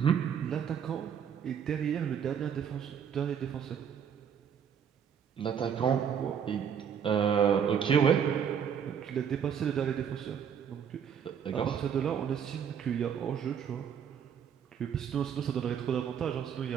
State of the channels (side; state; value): left; quieter; 7.9 dB